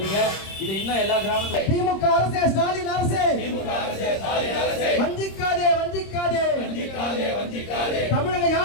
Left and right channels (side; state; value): right; late; 26 ms